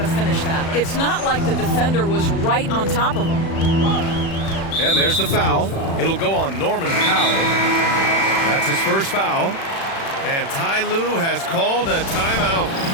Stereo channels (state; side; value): late; right; 36 ms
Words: finish that. It's not like the defender was right on top of him. And there's the foul. It'll go on Norman Powell. That's his first foul. And Ty Lue has called a timeout.